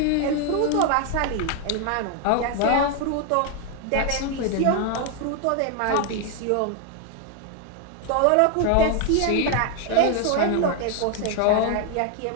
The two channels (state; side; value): different; both; correlation 0.01